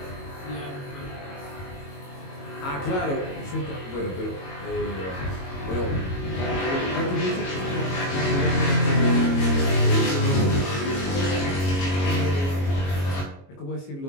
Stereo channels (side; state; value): right; late; 22 ms